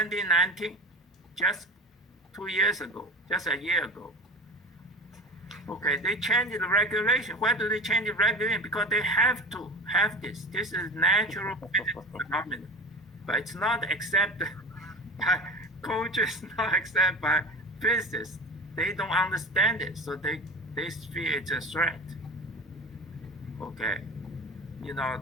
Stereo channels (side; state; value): both; normal; correlation 0.31